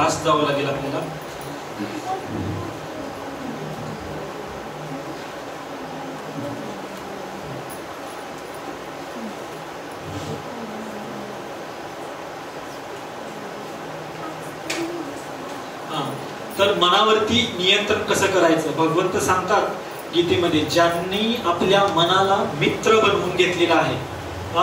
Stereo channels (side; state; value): both; identical; correlation 1.00